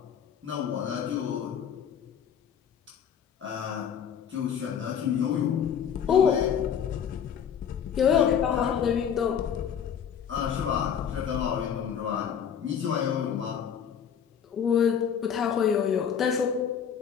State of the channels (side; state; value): right; quieter; 8.1 dB